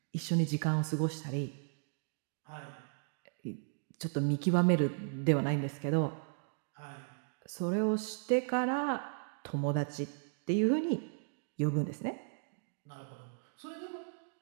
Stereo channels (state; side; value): silent; left; digital silence